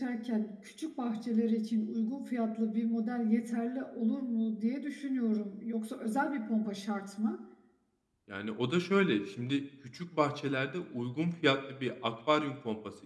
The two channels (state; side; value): identical; both; correlation 1.00